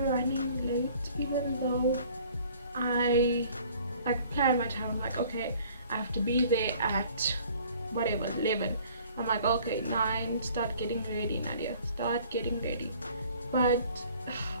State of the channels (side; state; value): both; inverted; correlation -0.53